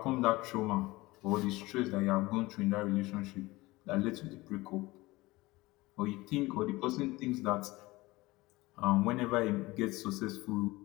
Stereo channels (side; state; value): right; quieter; 20.6 dB